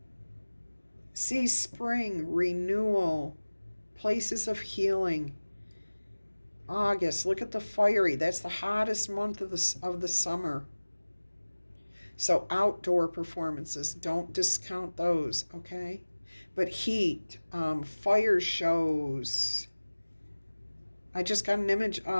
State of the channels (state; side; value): inverted; both; correlation -1.00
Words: See spring, renewal, places of healing. August, look at the fiery. That's the hottest month of the summer. So outdoor performances, don't discount those, okay? But heat, fire shows. I just got an image